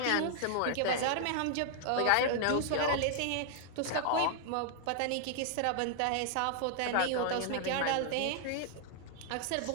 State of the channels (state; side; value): different; both; correlation -0.01